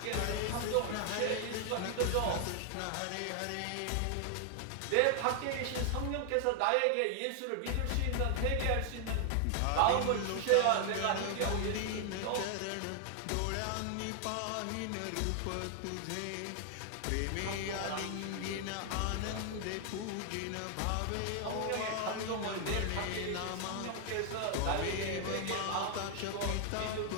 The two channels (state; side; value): different; both; correlation 0.00